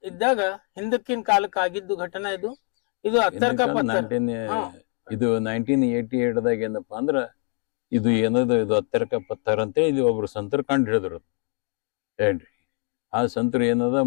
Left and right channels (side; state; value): right; quieter; 36.1 dB